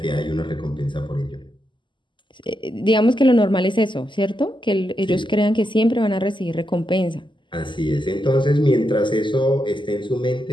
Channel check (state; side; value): late; right; 0.24 ms